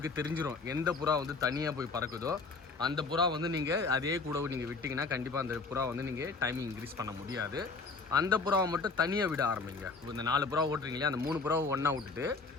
தெரிஞ்சிடும் எந்த புறா வந்து தனியாக போய் பறக்குதோ அந்த புறா வந்து நீங்கள் அதே கூட நீங்கள் விட்டிங்கன்னா கண்டிப்பாக அந்த புறா வந்து நீங்கள் டைமிங் இன்க்ரீஸ் பண்ண முடியாது. அந்த புறாவை மட்டும் தனியாக விட ஆரம்பிங்க. இந்த 4 புறா ஓட்டுறீங்களே, அந்த 3 புறாவை ஒன்றா விட்டுட்டு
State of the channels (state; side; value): quieter; right; 4.2 dB